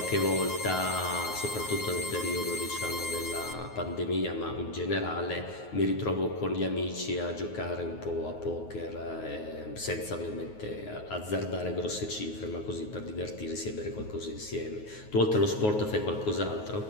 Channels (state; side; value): late; right; 9.5 ms